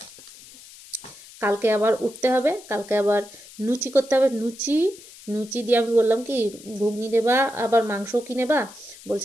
কালকে আবার উঠতে হবে, কালকে আবার লুচি করতে হবে। লুচি দিয়ে আমি বললাম কি ঘুগনি নেবা, আবার মাংসও কি নেবা?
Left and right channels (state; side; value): noise; left; hiss, 20 dB below the sound